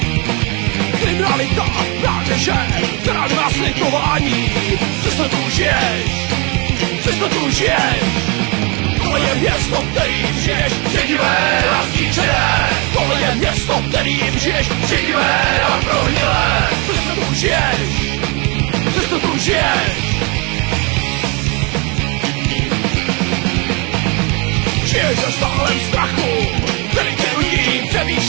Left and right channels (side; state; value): left; quieter; 30.6 dB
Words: Kriminalita, mládeže, která nemá slitování. Přesto tu žiješ, přesto tu žiješ. Tohle je město, kterým žiješ, šedivé a zničené. Tohle je město, kterým žiješ, šedivé a prohnilé. Přesto tu žiješ, přesto tu žiješ. Žiješ ve stálem strachu, který tě nutí